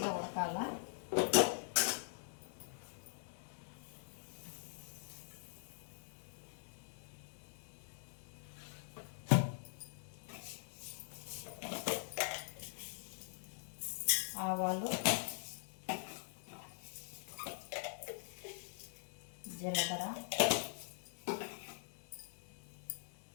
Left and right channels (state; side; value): silent; right; digital silence